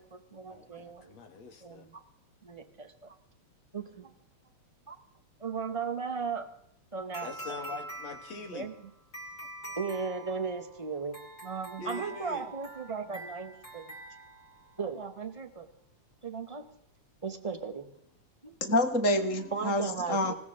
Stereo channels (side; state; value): right; late; 3.8 ms